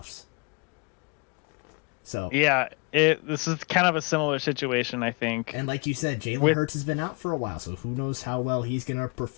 So yeah, this is kind of a similar situation, I think. And like you said, Jalen Hurts has been out for a while, so who knows how well he's gonna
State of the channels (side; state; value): right; quieter; 32.0 dB